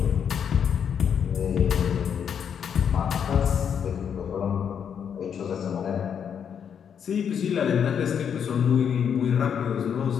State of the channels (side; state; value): right; quieter; 7.8 dB